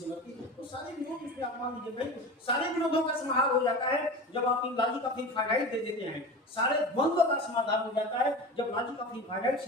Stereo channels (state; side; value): normal; both; correlation 0.31